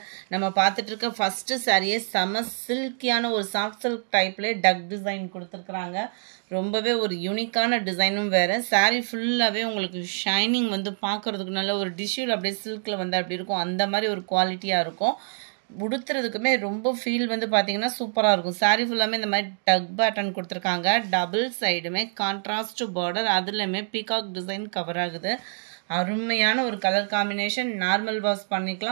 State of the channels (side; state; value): left; silent; digital silence